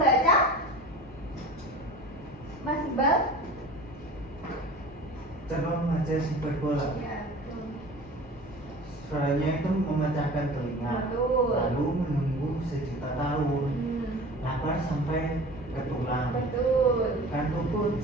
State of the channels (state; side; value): normal; both; correlation 0.39